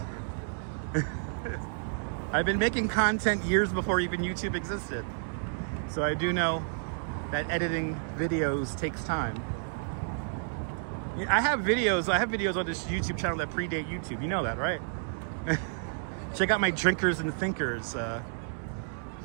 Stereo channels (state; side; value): silent; left; digital silence